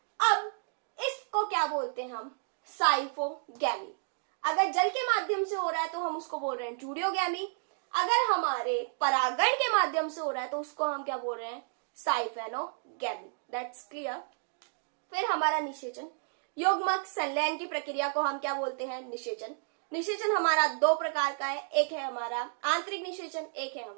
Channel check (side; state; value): left; silent; digital silence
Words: अब इसको क्या बोलते हैं हम, साइफोगैमी। अगर जल के माध्यम से हो रहा है तो हम उसको बोल रहे हैं जूडियोगैमी। अगर हमारे परागण के माध्यम से हो रहा है तो उसको हम क्या बोल रहे हैं, साइफेनोगैमी। That's clear. फिर हमारा निषेचन, युग्मक संलयन की प्रक्रिया को हम क्या बोलते हैं, निषेचन। निषेचन हमारा दो प्रकार का है, एक है हमारा आंतरिक निषेचन, एक है